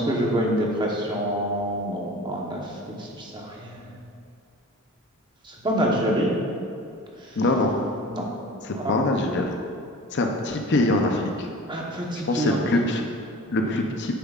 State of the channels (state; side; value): normal; both; correlation 0.41